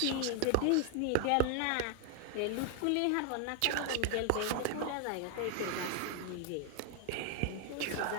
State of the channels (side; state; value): both; different; correlation 0.00